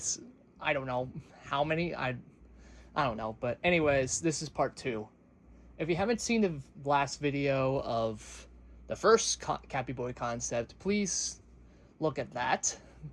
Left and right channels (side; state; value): both; identical; correlation 1.00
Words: I don't know how many, I don't know, but anyways, this is part 2. If you haven't seen the last video of the first Cappyboi concept, please look at that,